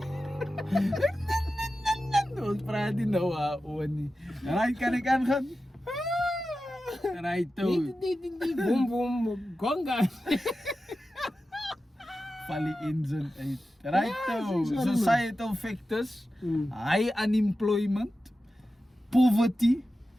Ons praat nie nou oor nie. Right, kan ek aangaan? Right, toe. Boom, boom, gonga. Valley engine uit. Right, toe. Societal factors, high unemployment, poverty,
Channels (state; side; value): normal; both; correlation 0.93